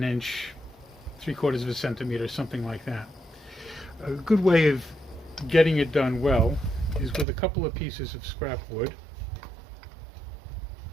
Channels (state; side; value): drops out; left; at 7.2 s